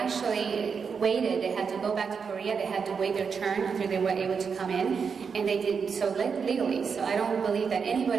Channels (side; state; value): left; quieter; 6.0 dB